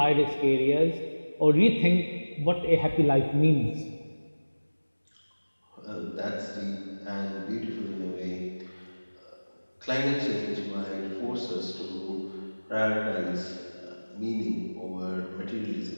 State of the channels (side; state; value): both; inverted; correlation -1.00